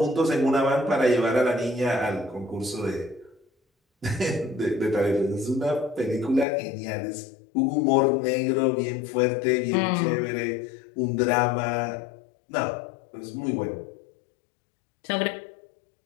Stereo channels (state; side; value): drops out; right; at 6.5 s